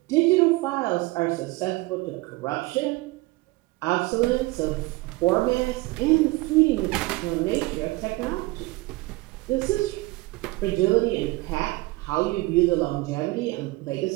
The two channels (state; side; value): quieter; left; 22.0 dB